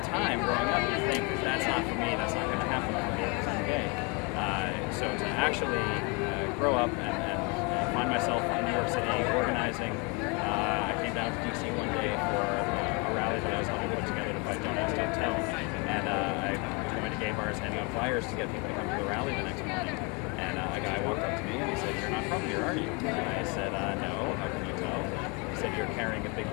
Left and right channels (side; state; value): right; quieter; 31.2 dB